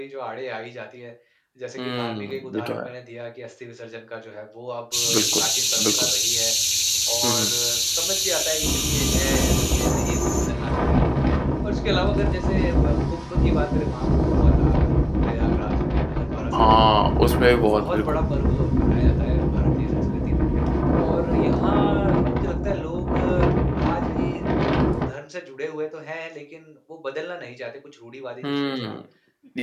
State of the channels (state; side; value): identical; both; correlation 1.00